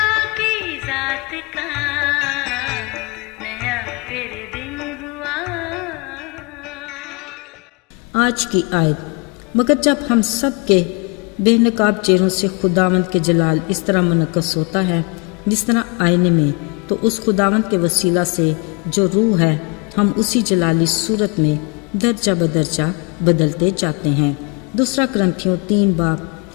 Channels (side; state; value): right; quieter; 30.3 dB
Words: की जात का नया फिर दिन हुआ। आज की आयत, मगर जब हम सब के बेनकाब चेहरों से खुदावंद के जलाल इस तरह मुनक्कस होता है जिस तरह आईने में, तो उस खुदावंद के वसीला से जो रूह है हम उसी जलाली सूरत में दर्जा बदर्जा बदलते जाते हैं। दूसरा करंथियों 3 बाब